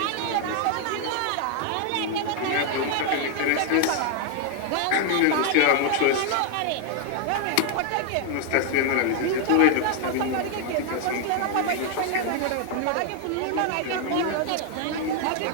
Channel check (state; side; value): different; both; correlation 0.00